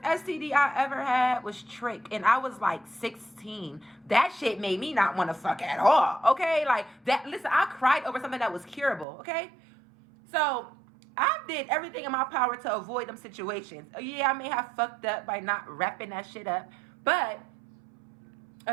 STD I ever had was Trick, and I was, like, 16. That shit made me not want to fuck at all, okay? Like, listen, I cried over something that was curable, okay? So I did everything in my power to avoid them situations. Yeah, I may have fucked up by not wrapping that shit up, but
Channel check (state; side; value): drops out; left; at 9.1 s